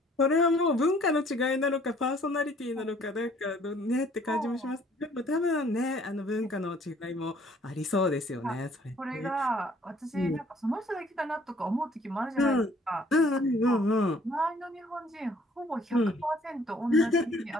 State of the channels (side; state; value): both; normal; correlation 0.59